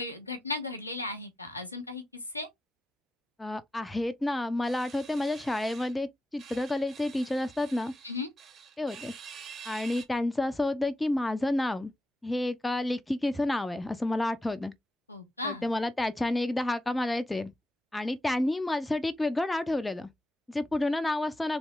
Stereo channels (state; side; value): normal; both; correlation 0.88